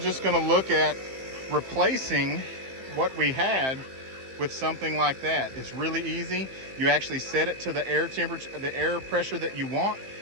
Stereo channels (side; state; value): left; late; 15 ms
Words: going to look at replacing what we had with something like that. It's really easy. You actually set it to the air temperature, the air pressure that you want,